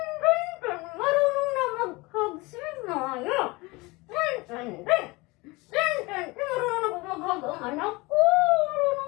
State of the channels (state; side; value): quieter; right; 23.8 dB